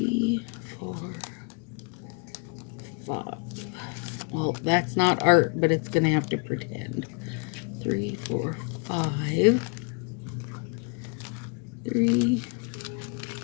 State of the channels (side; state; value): right; quieter; 33.3 dB